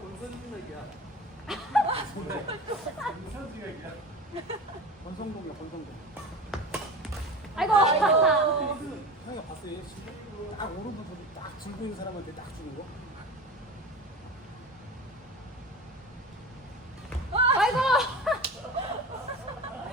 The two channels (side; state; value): both; normal; correlation 0.32